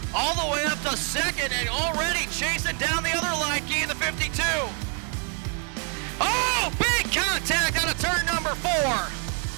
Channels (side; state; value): left; quieter; 37.7 dB